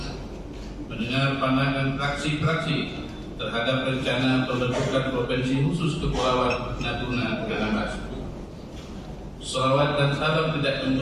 mendengar pandangan fraksi-fraksi terhadap rencana pembentukan Provinsi Khusus Kepulauan Natuna Anambas. Salawat dan salam tidak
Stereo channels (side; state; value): both; identical; correlation 1.00